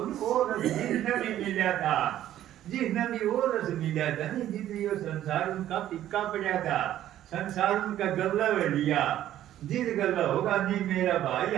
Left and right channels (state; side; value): quieter; left; 12.4 dB